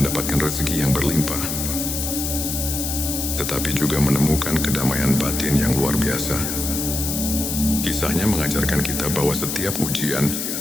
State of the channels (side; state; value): left; noise; hiss, 3 dB below the sound